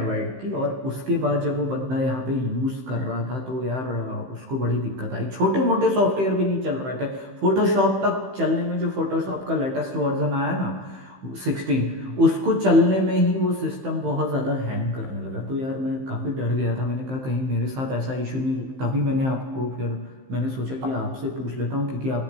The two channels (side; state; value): left; late; 15 ms